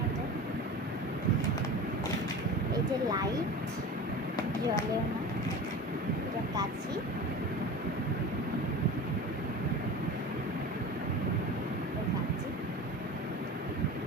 এটা। এই যে লাইট, জ্বলেও না, এটা কাঁচি।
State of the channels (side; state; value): both; normal; correlation 0.33